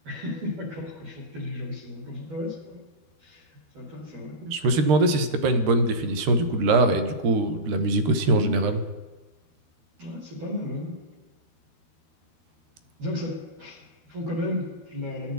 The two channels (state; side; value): late; left; 13 ms